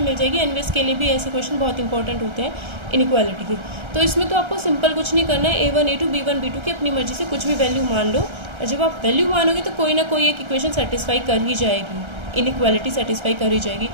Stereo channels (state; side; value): late; left; 1.3 ms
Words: मिल जाएगी। एनवीएस के लिए भी ऐसे क्वेश्चन बहुत इंपॉर्टेंट होते हैं इनइक्वालिटी के। तो इसमें तो आपको सिंपल कुछ नहीं करना है, a1 a2 b1 b2 की अपनी मर्जी से कुछ भी वैल्यू मान लो, और जब आप वैल्यू मानोगे तो कोई ना कोई एक इक्वेशन सेटिस्फाई कर ही जाएगी, इनइक्वालिटी सेटिस्फाई कर ही जाएगी।